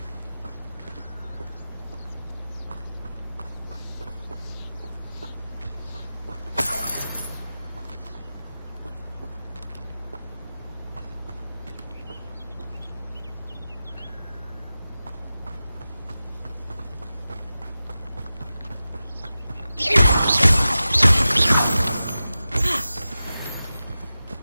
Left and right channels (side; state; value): both; inverted; correlation -0.94